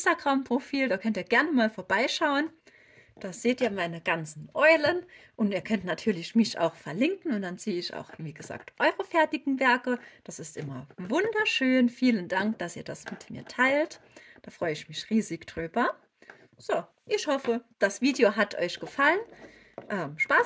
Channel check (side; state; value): both; identical; correlation 1.00